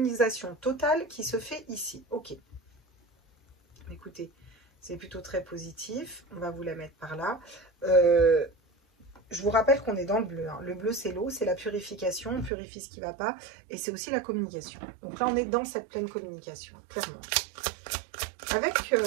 totale qui se fait ici. Ok. Écoutez, c'est plutôt très positif. On va vous la mettre par là. Je vous rappelle qu'on est dans le bleu. Hein. Le bleu, c'est l'eau, c'est la purification. On purifie ce qui ne va pas. Et c'est aussi la communication. Donc là, on est dans cette pleine communication, clairement. Avec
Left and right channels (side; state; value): left; drops out; at 12.5 s